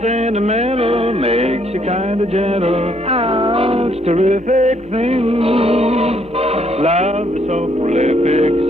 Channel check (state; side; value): noise; left; hum, 29 dB below the sound